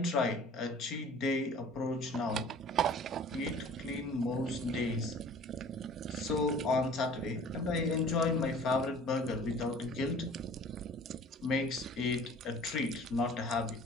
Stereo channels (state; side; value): normal; both; correlation 0.47